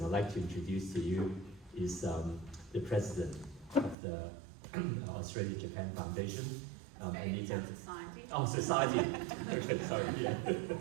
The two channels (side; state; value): left; drops out; at 4.0 s